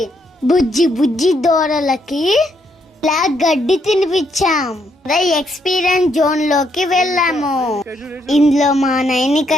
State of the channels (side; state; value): both; normal; correlation 0.74